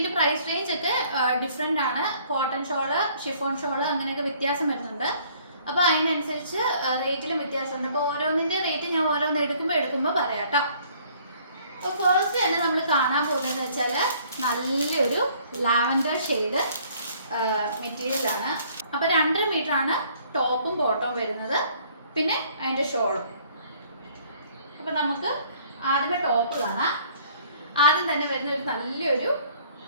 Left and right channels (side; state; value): both; inverted; correlation -0.59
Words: പ്രൈസ് റേഞ്ച് ഒക്കെ ഡിഫറെൻ്റ് ആണ്. കോട്ടൺ ഷോള്, ഷിഫോൺ ഷോള് അങ്ങനെയൊക്കെ വ്യത്യാസം വരുന്നുണ്ട്. അപ്പോൾ അതിനനുസരിച്ച് റേറ്റിലും വ്യത്യാസമുണ്ട്. അപ്പോൾ ഓരോന്നിൻ്റെ റേറ്റ് ഞാൻ ഓരോന്ന് എടുക്കുമ്പോൾ പറയാം കേട്ടോ. അപ്പോൾ ഫസ്റ്റ് തന്നെ നമ്മൾ കാണാൻ പോകുന്നതെന്ന് വെച്ചാൽ നല്ലൊരു ലാവൻഡർ ഷെയ്ഡ് മെറ്റീരിയലാണ്. അപ്പോൾ 2.5 മീറ്റർ ആണ് ടോപ്പും ബോട്ടവും വരുന്നത്, പിന്നെ അതിൻ്റെ ഷോളും. അപ്പോൾ നമുക്ക് ആദ്യമേ ടോപ്പ് കാണാം. ആദ്യം തന്നെ വരുന്ന ഒരു നല്ലൊരു